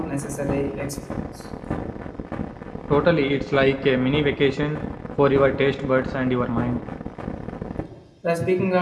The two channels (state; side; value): identical; both; correlation 1.00